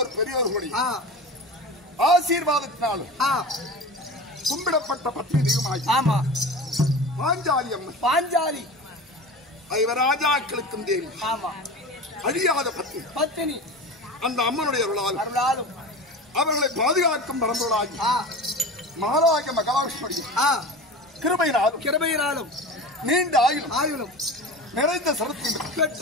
பெரியோர்களுடைய ஆசீர்வாதத்தினாலும் கும்பிடப்பட்ட பத்தினி தெய்வமாகி பாஞ்சாலி அம்மன் பாஞ்சாலி ராஜாக்களுக்கும் தேவி அழியாத பத்தினி அந்த அம்மனுடைய அருளாலும் அவர்களை பாதுகாக்கும் பரம்பொருளாகி மகாராஜ மகாலட்சுமியுடைய கிருபையினாலும் நீண்ட ஆயுளும் நிறைந்த சரத்தையும்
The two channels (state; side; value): normal; both; correlation 0.32